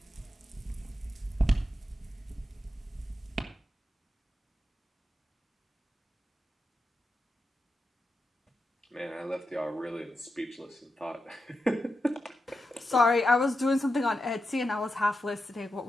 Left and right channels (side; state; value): both; normal; correlation 0.88